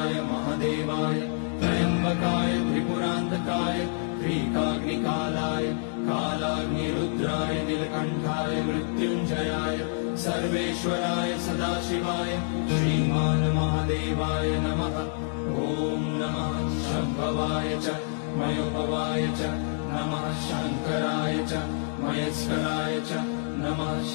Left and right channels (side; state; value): right; silent; digital silence